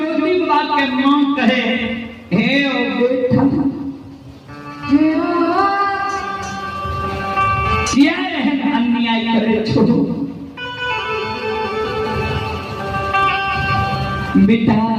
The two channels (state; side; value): identical; both; correlation 1.00